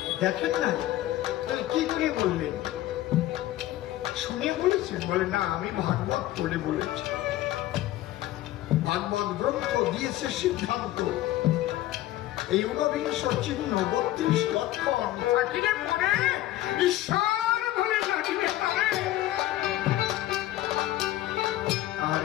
দেখেন না শুনে বলেছেন? বলে না, আমি ভাগবত পড়ে বলেছি। ভাগবত গ্রন্থ দিয়েছে সিদ্ধান্ত, এই ঊনবিংশ চিহ্ন 32 লক্ষণ থাকিলে পরে ঈশ্বর বলে ডাকিবে তারে।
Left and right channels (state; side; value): quieter; right; 15.1 dB